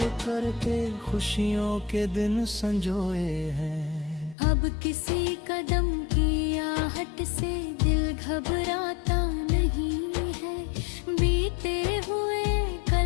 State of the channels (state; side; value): drops out; right; at 4.4 s